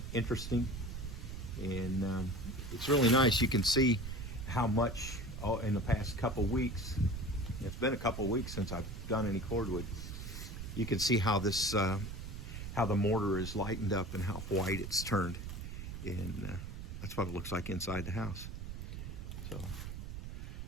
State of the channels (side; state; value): right; noise; rumble, 8 dB below the sound